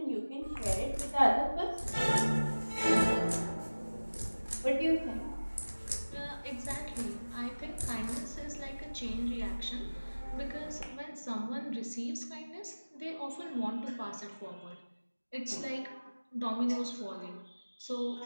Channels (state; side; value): inverted; both; correlation -1.00